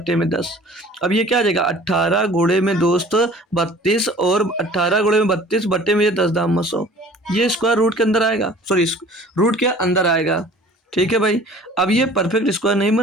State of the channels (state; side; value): normal; both; correlation 0.48